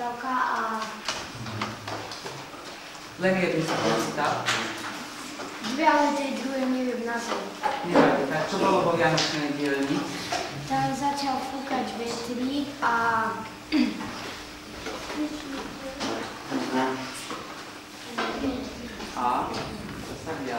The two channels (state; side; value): identical; both; correlation 1.00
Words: a... Len jednu sa prečítal? Dve, ale tej druhej neviem názov. Nevadí, tak čo bolo vo Vianočnej dielni? Tam začal fúkať vetrík a... A? Čo sa